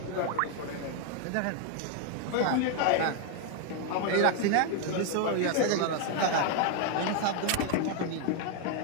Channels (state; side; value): different; both; correlation 0.01